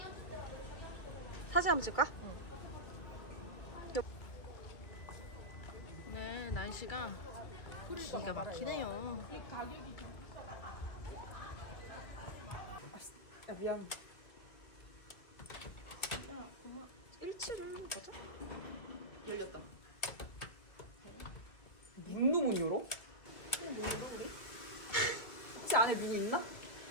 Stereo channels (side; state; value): right; late; 2.2 ms